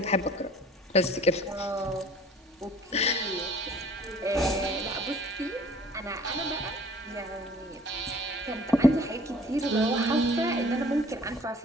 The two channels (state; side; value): normal; both; correlation 0.52